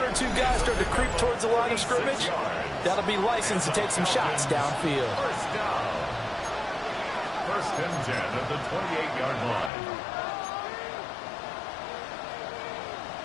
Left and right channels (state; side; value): drops out; right; at 9.7 s